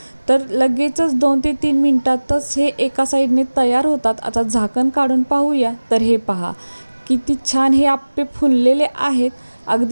तर लगेचच 2 ते 3 मिनटातच हे एका साईडने तयार होतात. आता झाकण काढून पाहूया. तर हे पहा किती छान हे आप्पे फुललेले आहेत,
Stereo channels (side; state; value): both; inverted; correlation -1.00